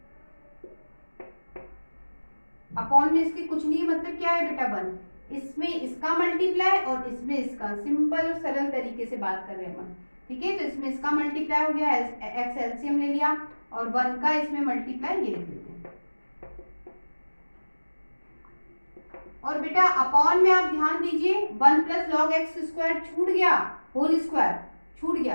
अपॉन में इसके कुछ नहीं, मतलब क्या है बेटा? 1, इसमें इसका मल्टीप्लाई और इसमें इसका, सिंपल और सरल तरीके से बात कर रहे हैं हम। ठीक है, तो इसमें इसका मल्टीप्लाई हो गया, x एलसीएम ले लिया, और 1 का इसमें मल्टीप्लाई ये लिख लेते हैं। और बेटा अपॉन में आप ध्यान दीजिए, 1 प्लस लॉग एक्स स्क्वायर छूट गया, होल स्क्वायर छूट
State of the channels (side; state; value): both; inverted; correlation -1.00